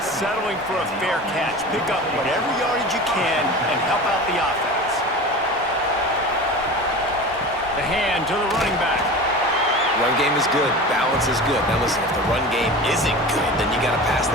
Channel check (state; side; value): normal; both; correlation 0.33